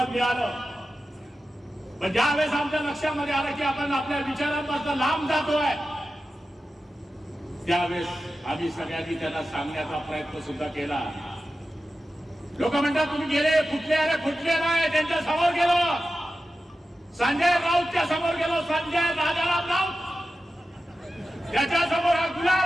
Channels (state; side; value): normal; both; correlation 0.93